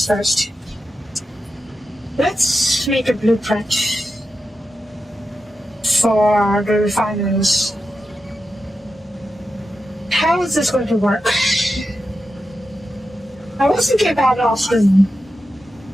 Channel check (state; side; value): normal; both; correlation 0.89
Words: Let's make a blueprint for the refineries. How is this going to work? I was thinking about it often,